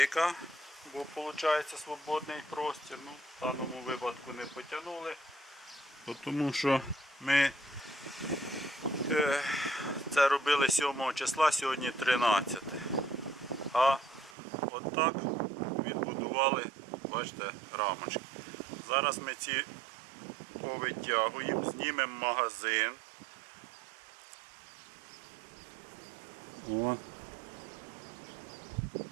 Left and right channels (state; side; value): drops out; left; at 14.4 s